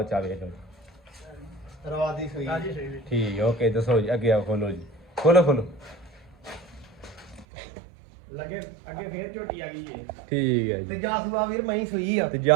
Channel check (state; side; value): drops out; left; at 7.5 s